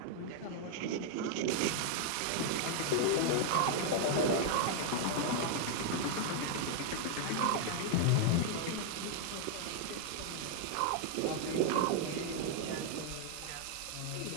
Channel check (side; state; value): both; different; correlation 0.00